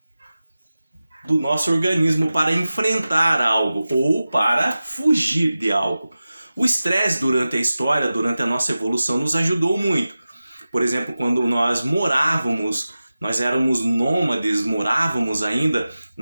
do nosso organismo para enfrentar algo ou para fugir de algo. O estresse durante a história, durante a nossa evolução, nos ajudou muito. Por exemplo, quando nós éramos nômades, morávamos ainda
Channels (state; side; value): inverted; both; correlation -0.95